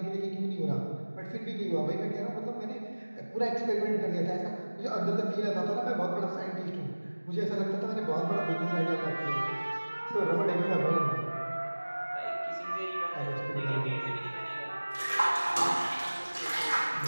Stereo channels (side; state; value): both; inverted; correlation -1.00